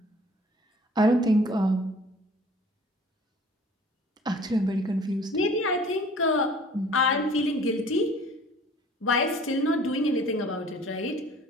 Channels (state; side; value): normal; both; correlation 0.50